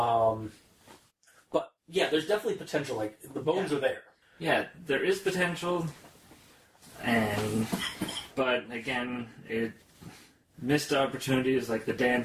Yeah, there's definitely potential. Like, the bones are there. Yeah, there is potential. But, again, it missed opportunities like the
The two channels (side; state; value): both; identical; correlation 1.00